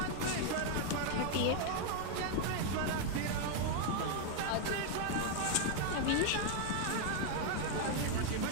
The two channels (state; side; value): different; both; correlation 0.00